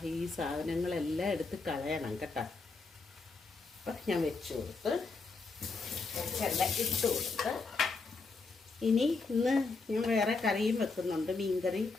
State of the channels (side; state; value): right; quieter; 4.0 dB